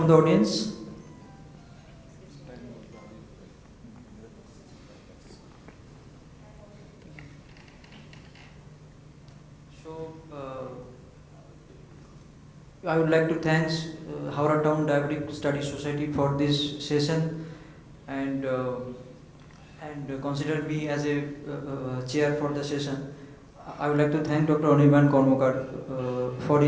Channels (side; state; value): both; identical; correlation 1.00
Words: the audience? So, I would like to thank Howrah Town Diabetic Study Society for this session and consider me as a chair for the session. I would like to thank Dr. Anirban Karmakar for